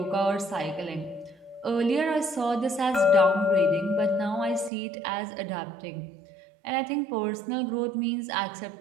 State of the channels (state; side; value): drops out; left; at 4.7 s